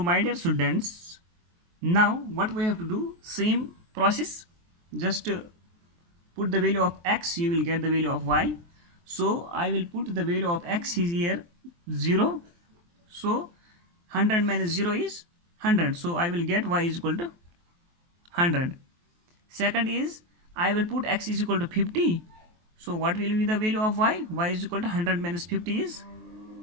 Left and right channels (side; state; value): left; late; 23 ms